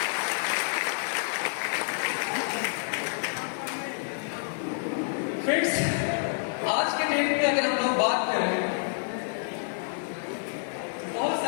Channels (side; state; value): right; silent; 59 dB below the other